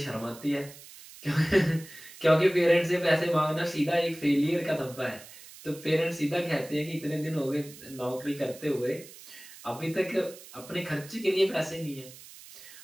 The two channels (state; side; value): noise; right; hiss, 18 dB below the sound